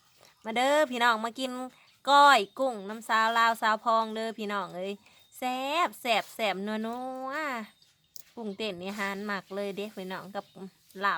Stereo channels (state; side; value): identical; both; correlation 1.00